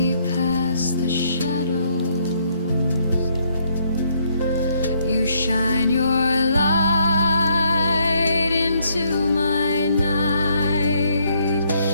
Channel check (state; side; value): inverted; both; correlation -0.70